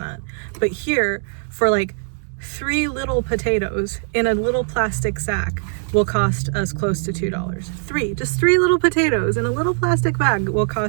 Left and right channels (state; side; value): silent; left; digital silence